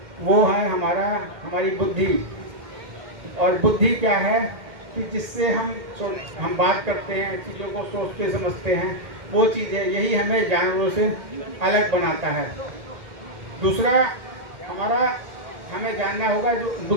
वो है हमारी बुद्धि। और बुद्धि क्या है कि जिससे हम बात करते हैं, चीज़ों को सोचते समझते हैं, वो चीज़ है, यही हमें जानवरों से अलग बनाता है। दूसरा, हमें जानना होगा जो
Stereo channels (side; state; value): left; late; 2.1 ms